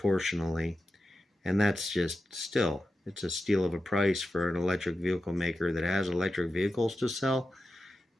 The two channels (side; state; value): both; normal; correlation 0.91